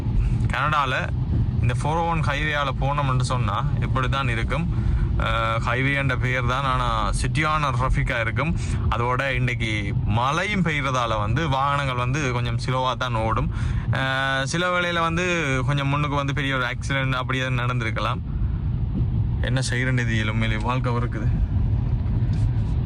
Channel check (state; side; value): identical; both; correlation 1.00